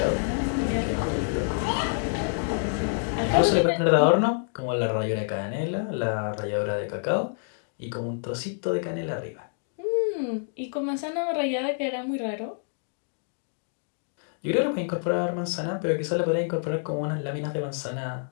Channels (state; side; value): silent; right; digital silence